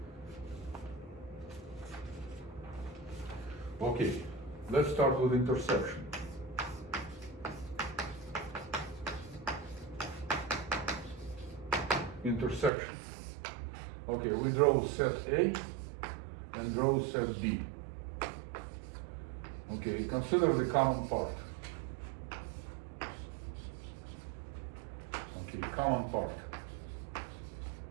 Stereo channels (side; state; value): left; drops out; at 12.7 s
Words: Okay, let's start with intersection. Intersection. Okay, we draw set A and draw set B. Okay, consider the common part. Okay, common part.